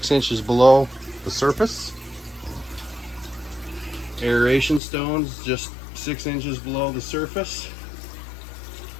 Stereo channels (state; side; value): drops out; right; at 4.8 s